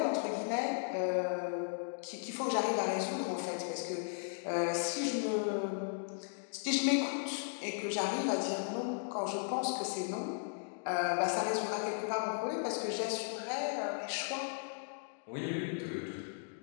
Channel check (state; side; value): silent; right; digital silence